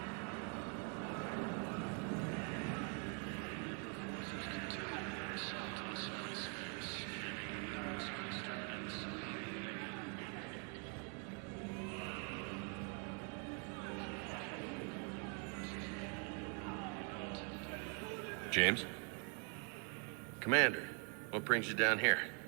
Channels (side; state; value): left; quieter; 39.0 dB